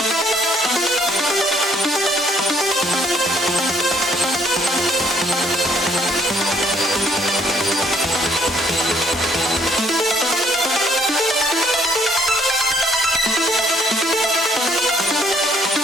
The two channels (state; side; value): normal; both; correlation 0.66